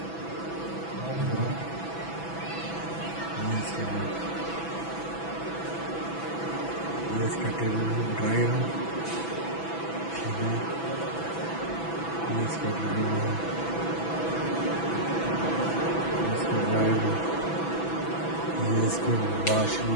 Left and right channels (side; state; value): right; late; 6.0 ms